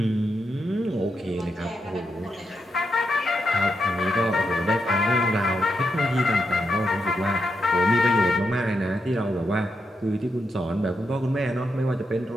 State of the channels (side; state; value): both; normal; correlation 0.83